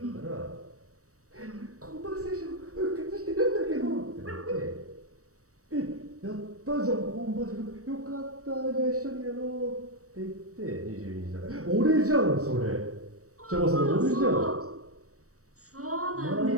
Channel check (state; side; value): late; left; 0.65 ms